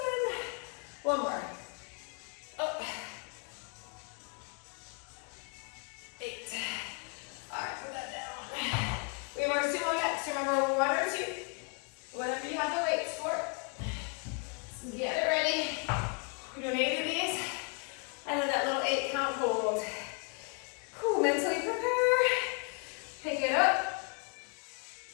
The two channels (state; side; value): quieter; right; 36.6 dB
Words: One more. Up. 8. All right, put that down. We have our sumo next. Remember, 1 or 2. Whatever you have the weights for. So get it ready. We're doing 8 of these. And then that little 8 count hold. Cool, mentally prepare. Pick it up.